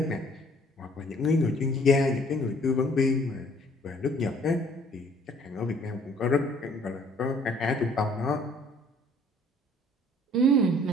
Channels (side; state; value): both; normal; correlation 0.58